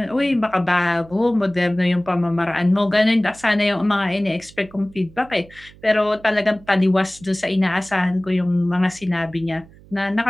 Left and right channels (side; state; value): right; noise; hum, 24 dB below the sound